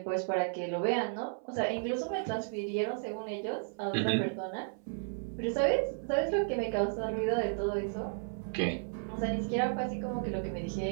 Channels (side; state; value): left; silent; 55 dB below the other